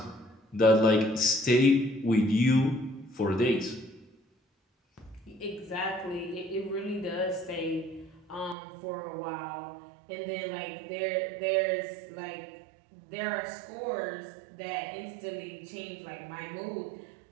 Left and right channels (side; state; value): left; drops out; at 8.6 s